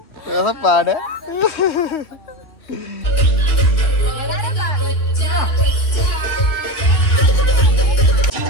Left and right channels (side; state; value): right; late; 2.8 ms